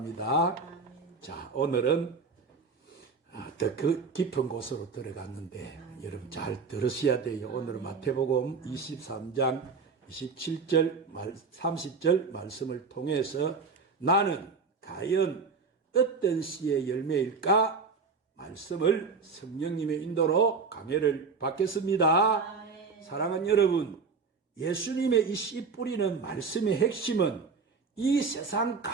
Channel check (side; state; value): left; quieter; 4.8 dB